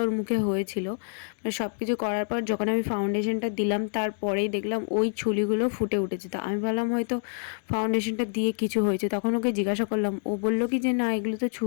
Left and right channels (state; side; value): silent; right; digital silence